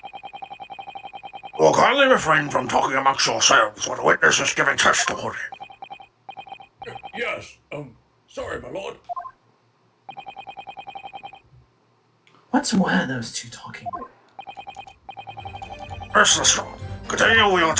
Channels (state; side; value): identical; both; correlation 1.00